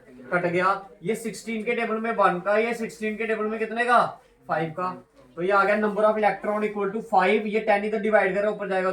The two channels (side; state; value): both; identical; correlation 1.00